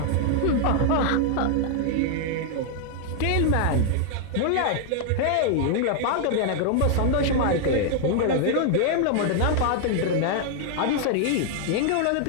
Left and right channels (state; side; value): different; both; correlation 0.00